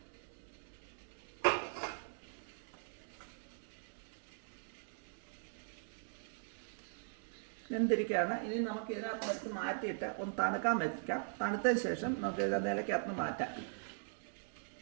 വെന്തിരിക്കുകയാണ്. ഇനി നമുക്ക് ഇതിനകത്ത് വെച്ച് മാറ്റിയിട്ട് ഒന്ന് തണുക്കാൻ വെക്കാം. തണുത്തതിന് ശേഷം നമുക്ക് ഇത് നിലയ്ക്കകത്ത് മാറ്റാം.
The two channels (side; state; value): left; silent; digital silence